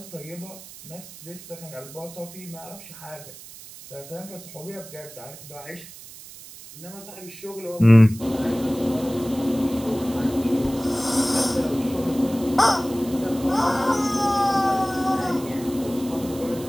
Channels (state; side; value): noise; right; hiss, 16 dB below the sound